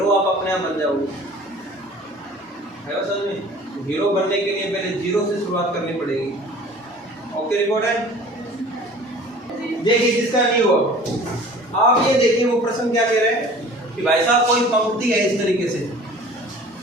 आप अपने आप बन जाओगे। है समझ में? हीरो बनने के लिए पहले जीरो से शुरुआत करनी पड़ेगी। ओके, रिकॉर्ड है? देखिए जिसका नहीं हुआ, आप ये देखिए वो प्रश्न क्या कह रहे हैं कि भाई साहब कोई पंक्ति है इस तरीके से,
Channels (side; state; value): both; normal; correlation 0.46